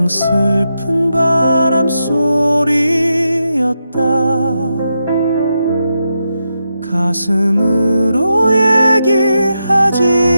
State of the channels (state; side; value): inverted; both; correlation -0.86